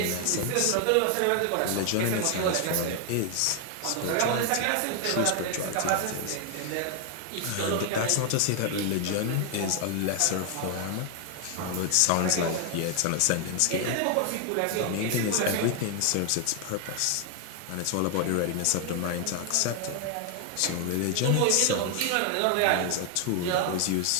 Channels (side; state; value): both; different; correlation 0.00